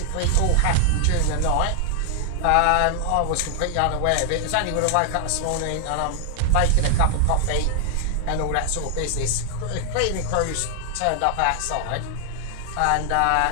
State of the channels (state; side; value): different; both; correlation 0.00